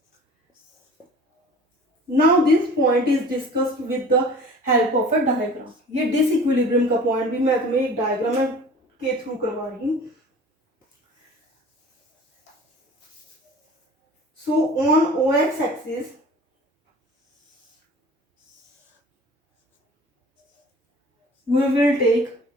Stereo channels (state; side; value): normal; both; correlation 0.44